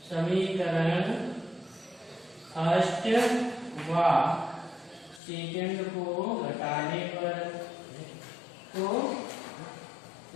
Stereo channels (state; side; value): drops out; right; at 5.2 s